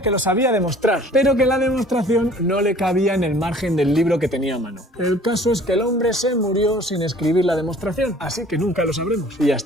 que lo sabía demostrar, pero que la demostración no le cabía en el margen del libro que tenía a mano. El caso es que el hombre se murió sin escribir la demostración, así que nunca lo sabremos. Y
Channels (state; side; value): normal; both; correlation 0.51